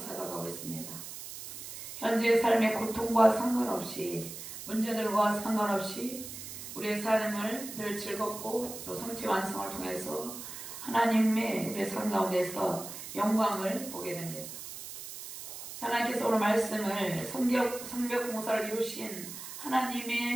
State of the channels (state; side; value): noise; right; hiss, 10 dB below the sound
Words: 있습니다. 현재의 삶의 고통과 상관없이, 문제들과 상관없이 우리의 삶을 늘 즐겁고 또 성취 완성을 통해서 하나님의 우리의 삶 가운데서 영광을 보게 됩니다. 하나님께서 오늘 말씀을 성벽 공사를 이루신